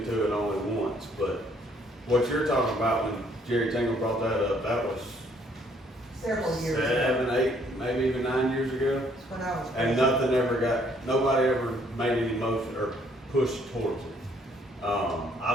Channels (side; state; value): both; normal; correlation 0.65